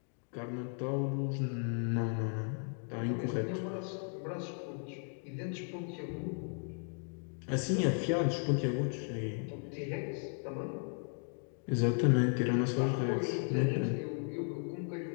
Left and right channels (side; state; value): right; silent; 54 dB below the other